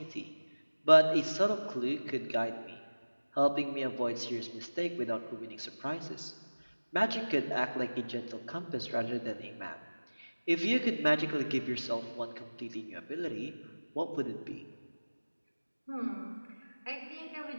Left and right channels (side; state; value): both; inverted; correlation -1.00